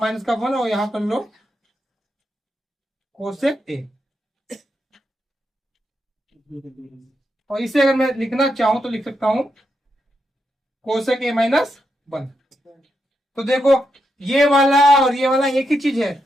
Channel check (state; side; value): normal; both; correlation 0.83